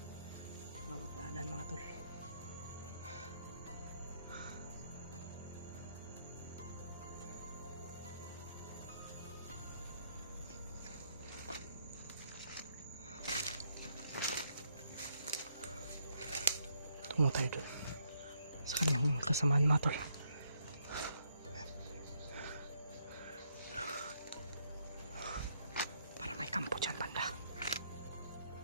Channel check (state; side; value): inverted; both; correlation -0.73